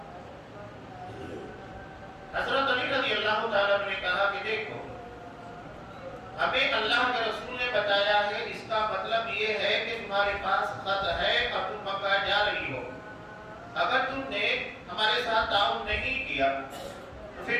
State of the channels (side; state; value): both; identical; correlation 1.00